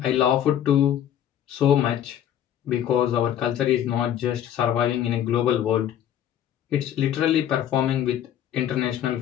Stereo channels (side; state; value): right; quieter; 10.5 dB